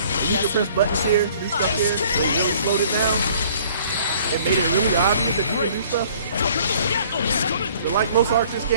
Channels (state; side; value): inverted; both; correlation -0.56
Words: You can press buttons here, do stuff here. They really slowed it down. It made it really obvious that you can do stuff. But like most Arceus